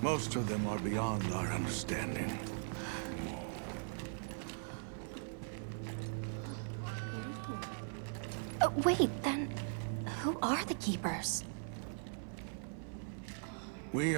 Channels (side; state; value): left; silent; 51 dB below the other